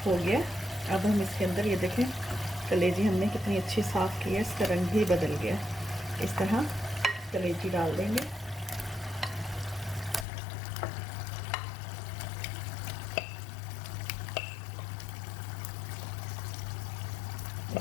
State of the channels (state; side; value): drops out; right; at 10.2 s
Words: हो गया। अब हम इसके अंदर ये देखें कलेजी हमने कितनी अच्छी साफ़ की है, इसका रंग भी बदल गया। इस तरह कलेजी डाल देंगे।